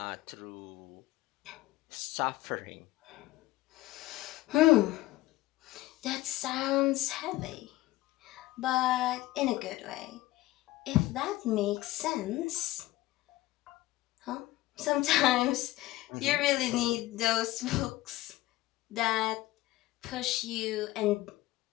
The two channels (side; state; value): right; quieter; 17.6 dB